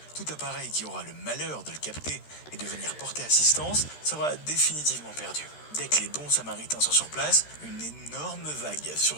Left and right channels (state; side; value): late; right; 13 ms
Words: Tout appareil qui aura le malheur de le capter et de venir porter assistance sera définitivement perdu. Dès que les bons samaritains sont sur place, une énorme vague